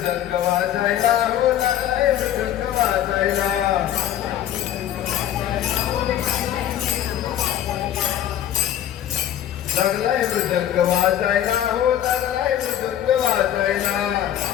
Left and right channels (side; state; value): right; quieter; 11.2 dB